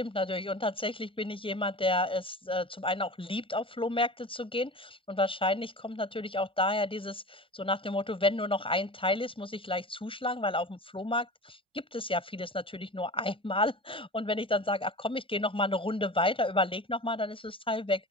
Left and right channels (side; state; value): both; normal; correlation 0.34